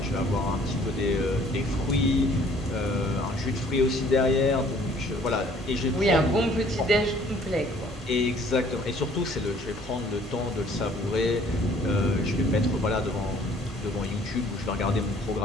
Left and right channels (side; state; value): both; normal; correlation 0.57